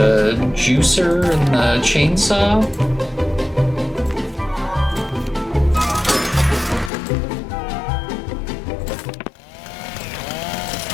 juicer and the chainsaw.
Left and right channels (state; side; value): drops out; right; at 6.9 s